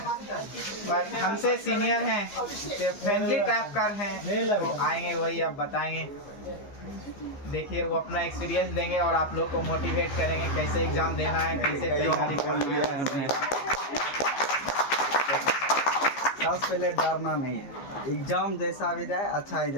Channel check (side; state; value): right; late; 15 ms